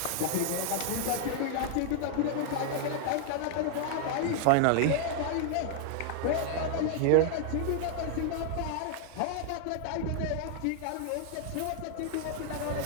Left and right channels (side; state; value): both; different; correlation 0.00